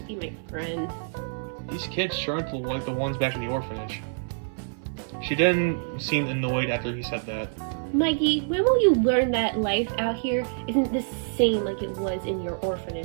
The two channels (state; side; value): silent; left; 59 dB below the other